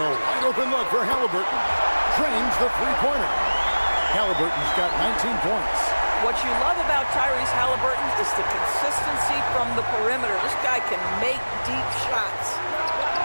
wide open look for Halliburton. Drains the three-pointer. Halliburton's got 19 points. What you love about Tyrese Halliburton is the consistency from the perimeter. This guy can make deep shots.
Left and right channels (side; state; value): both; inverted; correlation -1.00